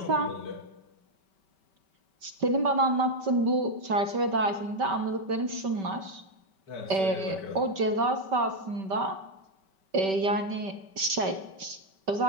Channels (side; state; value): left; late; 5.2 ms